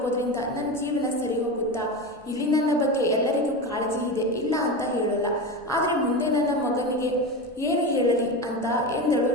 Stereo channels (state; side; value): normal; both; correlation 0.22